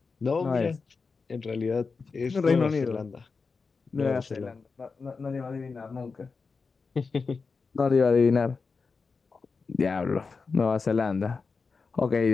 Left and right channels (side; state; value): right; quieter; 4.7 dB